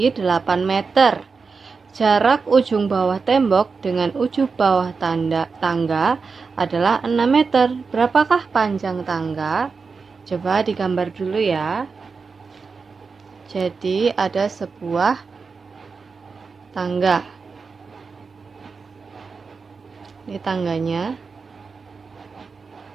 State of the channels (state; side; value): quieter; left; 4.9 dB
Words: 8 meter. Jarak ujung bawah tembok dengan ujung bawah tangga adalah 6 meter. Berapakah panjang tangga? Coba digambar dulu ya. Jadi ada sebuah tangga. Ini tangganya.